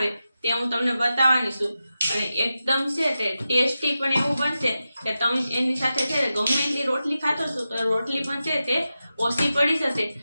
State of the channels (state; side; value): inverted; both; correlation -0.91